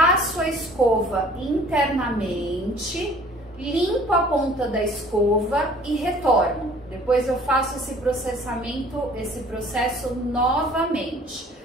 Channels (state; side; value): normal; both; correlation 0.52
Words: a escova internamente, limpo a ponta da escova e retorno. Depois eu faço esse processo novamente.